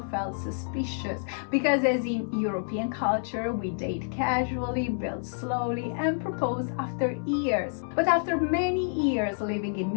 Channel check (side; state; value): right; silent; 59 dB below the other